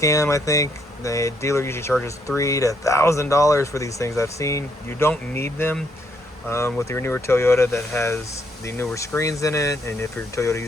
I think. The dealer usually charges $3,000 to $1,000 for these things I've seen. You don't need them with your newer Toyota that has the newer screens in it, and if your Toyota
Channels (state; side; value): normal; both; correlation 0.72